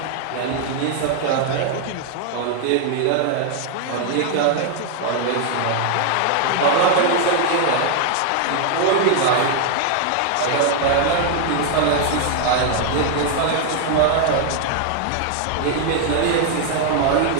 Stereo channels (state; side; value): different; both; correlation 0.00